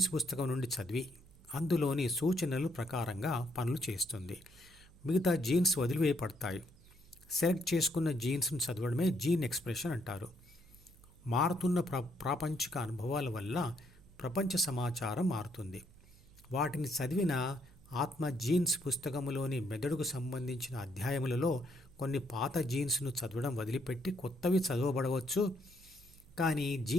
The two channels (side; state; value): right; noise; hum, 25 dB below the sound